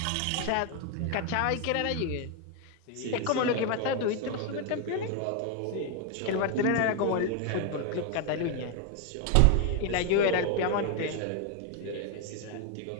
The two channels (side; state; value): both; different; correlation 0.01